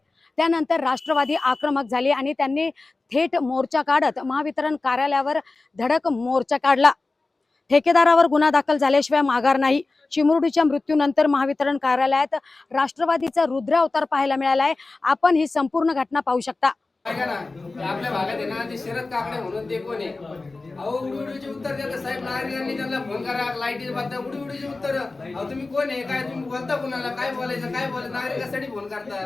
त्यानंतर राष्ट्रवादी आक्रमक झाली आणि त्यांनी थेट मोर्चा काढत महावितरण कार्यालयावर धडक मोर्चा काढला. ठेकेदारावर गुन्हा दाखल झाल्याशिवाय माघार नाही. चिमुरडीच्या मृत्यूनंतर महावितरण कार्यालयात राष्ट्रवादीचा रुद्र अवतार पाहायला मिळाला आहे. आपण ही संपूर्ण घटना पाहू शकता. आपल्या भागात आहे ना, ते शरद काकडे म्हणून ते कोण आहे, अहो उडीचे उत्तर देतात साहेब. नागरिकांनी त्यांना फोन करा, लाईटीचे बाबतीत उडीचे उत्तर. अहो तुम्ही कोण आहे, काय तुम्ही बोलता, कुणाला काय बोलायचं, काय बोलायचं, नागरिकांसाठी फोन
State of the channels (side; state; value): right; quieter; 3.5 dB